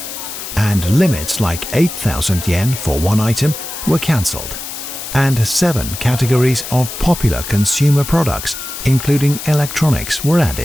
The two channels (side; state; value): left; noise; hiss, 9 dB below the sound